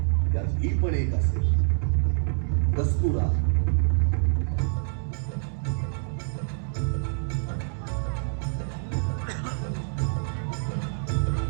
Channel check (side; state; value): left; silent; digital silence